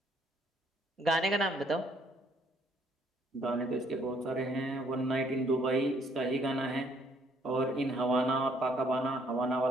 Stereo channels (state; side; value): normal; both; correlation 0.66